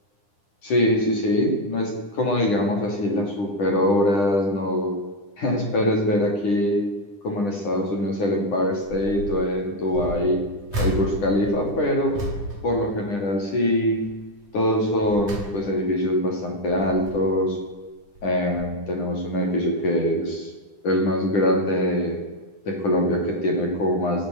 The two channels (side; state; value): right; late; 10 ms